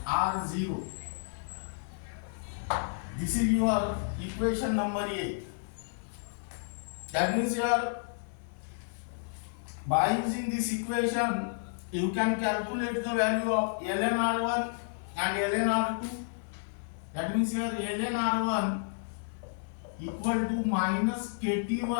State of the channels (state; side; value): silent; right; digital silence